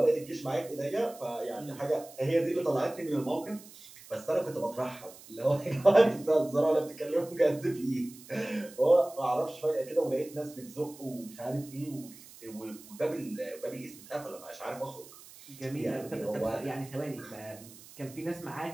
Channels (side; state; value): right; noise; hiss, 19 dB below the sound